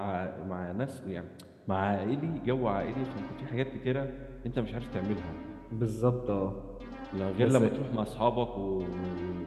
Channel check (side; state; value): both; identical; correlation 1.00